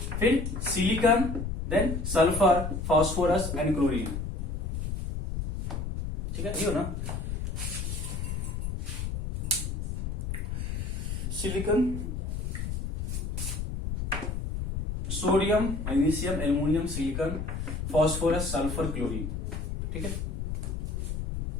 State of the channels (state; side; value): noise; left; rumble, 3 dB below the sound